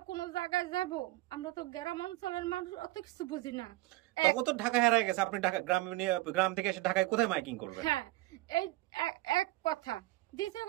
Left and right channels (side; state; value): left; quieter; 19.1 dB